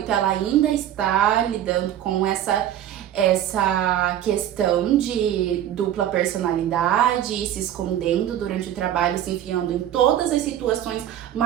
ela ainda está lidando com essa questão de dupla personalidade e se escondendo durante o trabalho, se enfiando em todas as situações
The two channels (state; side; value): quieter; left; 11.2 dB